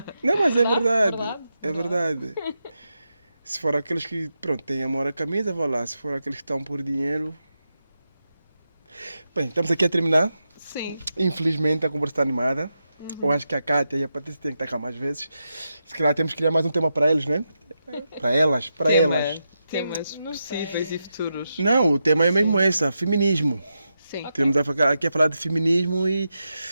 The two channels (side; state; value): both; inverted; correlation -0.87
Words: Não, mas é verdade. verdade. É verdade. Se for aqueles que, pronto, têm amor à camisa, vá lá. Se for aqueles que estão por dinheiro... Bem, estamos aqui a terminar. Sim. Infelizmente, a conversa está animada. Eu acho que a Kátia e a Patrícia têm que estar cá mais vezes. Se calhar temos que criar mais um tema para eles, né? Para elas, para elas. Temas Não sei. possíveis e futuros. Não, o tema é mesmo esse, feminismo. Sim. Tivemos aqui a falar de feminismo e